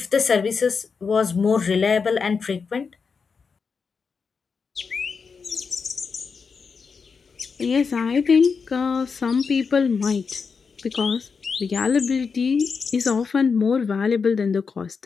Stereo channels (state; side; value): quieter; right; 5.4 dB